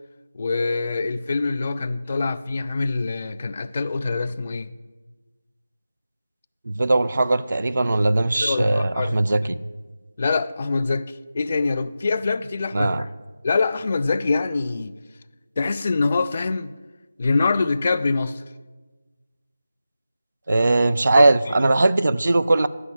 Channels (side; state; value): both; inverted; correlation -0.92